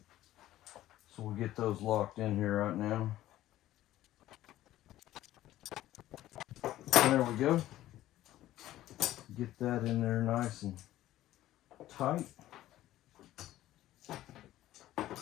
So we'll get those locked in here right now. There we go. Get that in there nice and tight.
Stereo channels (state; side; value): quieter; right; 14.4 dB